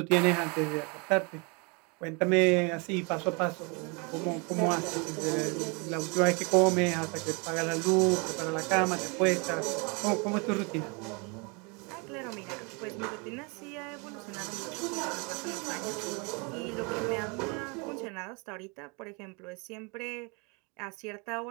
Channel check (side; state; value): left; quieter; 31.3 dB